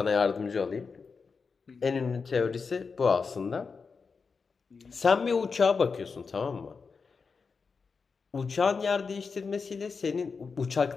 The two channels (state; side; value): quieter; right; 5.1 dB